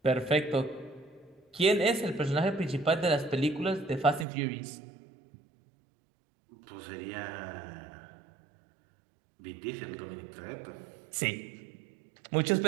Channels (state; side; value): drops out; left; at 4.2 s